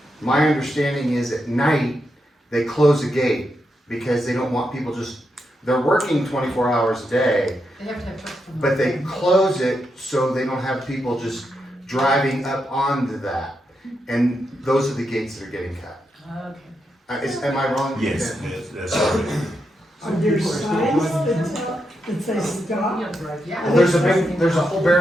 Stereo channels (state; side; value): normal; both; correlation 0.84